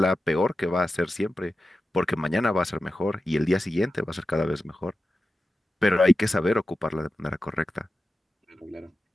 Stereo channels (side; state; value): both; normal; correlation 0.92